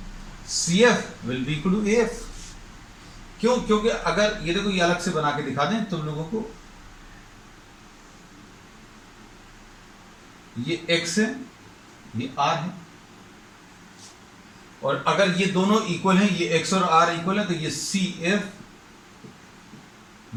C F will be equal to A F. क्यों, क्योंकि अगर ये देखो ये अलग से बना के दिखा दें तुम लोगों को, ये x है ये r है, और अगर ये दोनों इक्वल हैं, ये x और r इक्वल है, तो ये C F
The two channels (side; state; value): both; identical; correlation 1.00